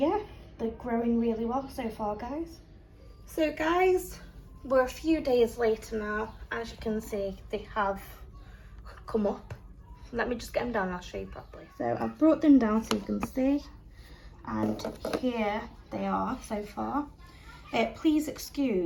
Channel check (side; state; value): both; identical; correlation 1.00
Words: they're growing really well so far guys. So guys, we're a few days later now. As you can see, they have come up. Let me just get them down and I'll show you properly. So I've brought them down so you can see, and here they are so far. Please